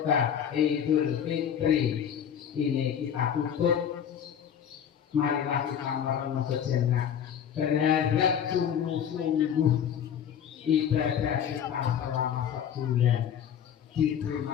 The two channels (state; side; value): quieter; right; 8.6 dB